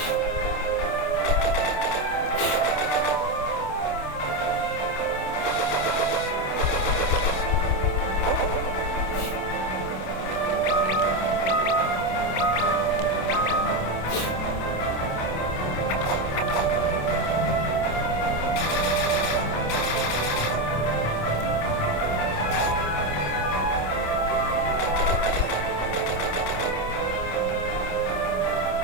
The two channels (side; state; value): right; late; 27 ms